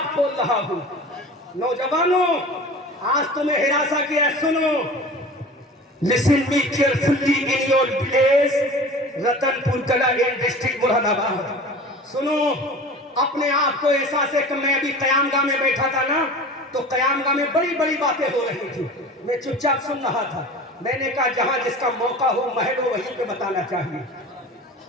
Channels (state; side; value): normal; both; correlation 0.38